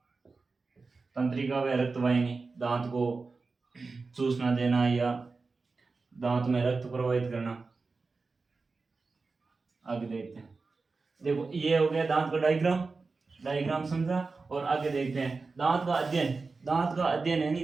तंत्रिका व रक्तवाहिनी दांत को चूसना देना या दांत में रक्त प्रवाहित करना। आगे देखते हैं, देखो ये हो गया दांत का डायग्राम। डायग्राम समझा। और आगे देखते हैं दांत का अध्ययन। दांत का अध्ययन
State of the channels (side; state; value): left; quieter; 4.1 dB